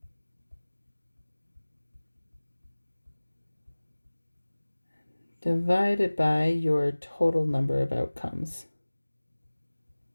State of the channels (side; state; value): both; inverted; correlation -1.00